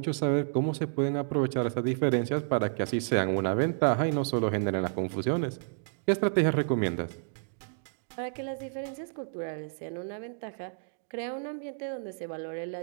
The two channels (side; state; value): left; silent; digital silence